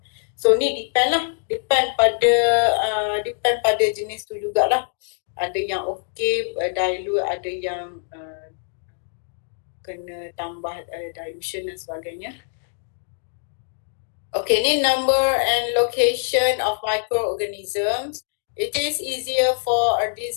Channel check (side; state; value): right; silent; digital silence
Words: So ni depend pada jenis tu jugalah. Ada yang okay dilute, ada yang kena tambah dilution dan sebagainya. Okay, ni number and location of microorganisms. It is easier for a